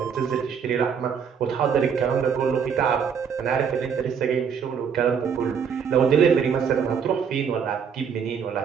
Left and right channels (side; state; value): left; quieter; 6.9 dB